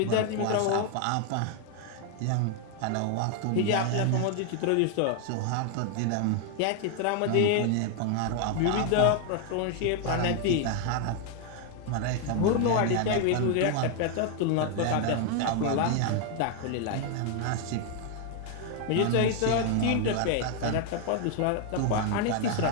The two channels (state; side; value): different; both; correlation 0.00